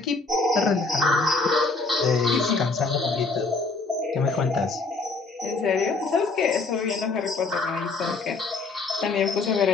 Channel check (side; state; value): right; quieter; 3.8 dB